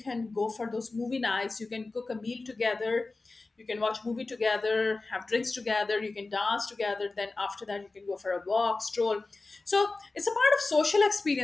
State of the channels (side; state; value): right; quieter; 3.5 dB